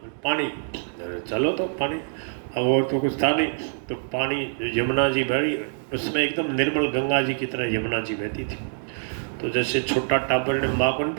पानी, चलो तो पानी। अब और तो कुछ था नहीं, तो पानी यमुना जी भरी, उसमें एकदम निर्मल गंगा जी की तरह यमुना जी बहती थी। तो जैसे छोटा टाबर ने माँ को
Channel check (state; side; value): silent; left; digital silence